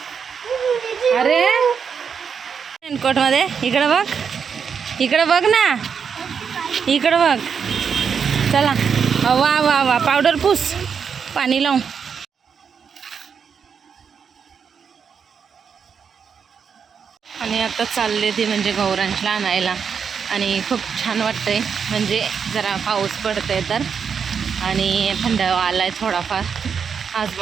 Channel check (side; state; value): left; quieter; 6.6 dB